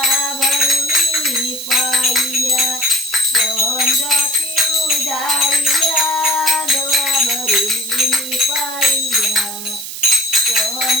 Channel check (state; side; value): noise; right; hiss, 8 dB below the sound